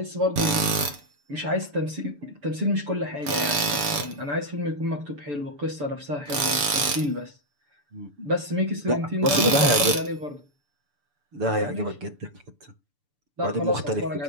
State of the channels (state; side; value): late; left; 6.9 ms